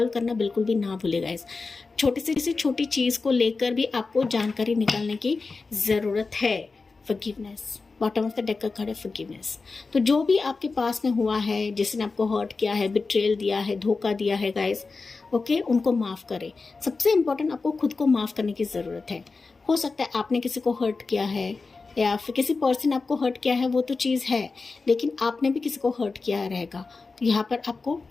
करना बिल्कुल भी ना भूलेगा। इस छोटी से छोटी चीज़ को लेकर भी आपको जानकारी निकालने की ज़रूरत है। Forgiveness, bottom of the deck का कार्ड है फॉरगिवनेस। तो जो भी आपके पास में हुआ है, जिसने आपको हर्ट किया है, बिट्रेल दिया है, धोखा दिया है गाइस, ओके, उनको माफ़ करें। सबसे इम्पोर्टेंट, आपको खुद को माफ़ करने की ज़रूरत है। हो सकता है आपने किसी को हर्ट किया है या फिर किसी पर्सन आपको हर्ट किया है, वो तो चीज़ है, लेकिन आपने भी किसी को हर्ट किया रहेगा, तो यहाँ पर आपको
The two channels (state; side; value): quieter; right; 4.1 dB